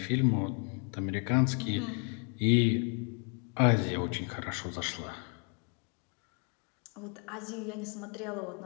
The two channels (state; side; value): quieter; right; 39.0 dB